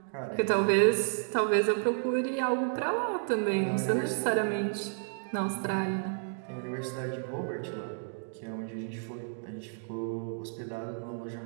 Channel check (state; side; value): silent; left; digital silence